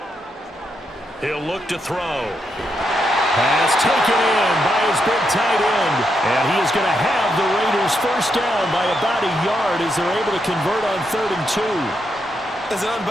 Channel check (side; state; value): both; normal; correlation 0.81